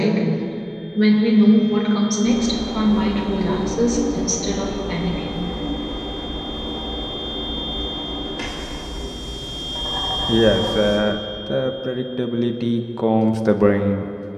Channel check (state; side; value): identical; both; correlation 1.00